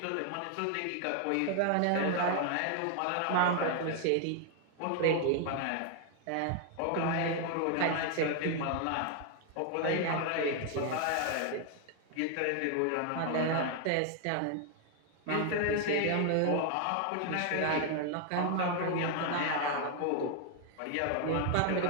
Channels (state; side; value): different; both; correlation 0.00